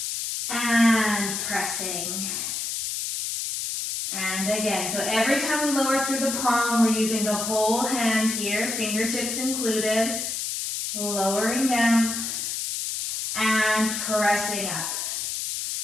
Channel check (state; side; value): noise; left; hiss, 3 dB below the sound